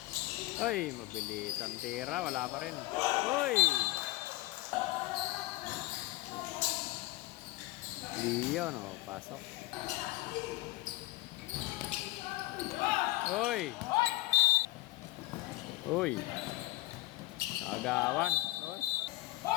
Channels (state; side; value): quieter; right; 19.8 dB